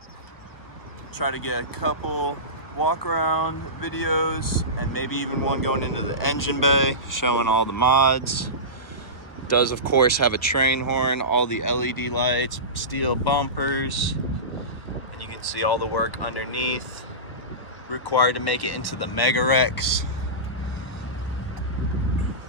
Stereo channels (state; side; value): late; right; 1.1 ms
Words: Try to get a couple walk around videos and maybe even one going into the engine bay showing all the mods. Does of course have a train horn, all the LED lights, steel bumpers, and you can see all the work underneath required to make it into the MegaRexx.